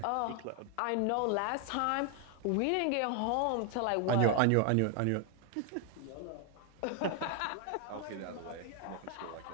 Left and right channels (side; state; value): both; different; correlation 0.00